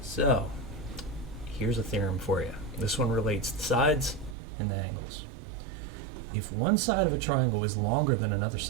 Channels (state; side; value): drops out; left; at 4.4 s